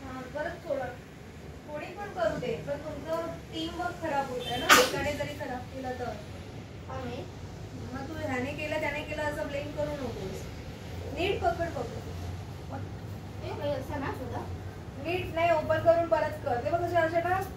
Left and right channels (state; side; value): identical; both; correlation 1.00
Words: परत थोडा कोणी पण करू दे पण तुमचं टीम वर्क खराब होत आहे ना एकाने जरी खराब केलं तर आम्ही मग तू ह्याने केलं त्याने केलं असं ब्लेम करू नकोस नीट पकड असं ना सुद्धा नीट नाही ओपन करून परत कर ते बघ अशा ना